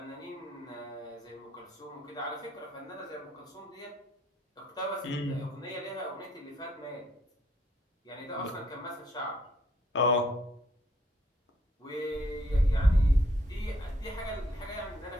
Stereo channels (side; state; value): both; normal; correlation 0.68